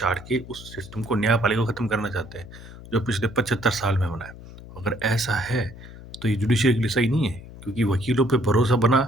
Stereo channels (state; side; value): noise; left; hum, 16 dB below the sound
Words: के उस सिस्टम को न्यायपालिका को ख़त्म करना चाहते हैं, जो पिछले 75 साल में बना है। अगर ऐसा है, तो ये जुडिशरी के लिए सही नहीं है क्योंकि वकीलों पे भरोसा बना